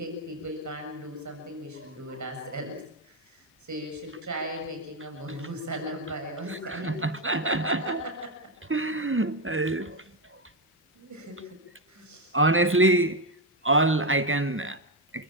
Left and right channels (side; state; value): both; normal; correlation 0.08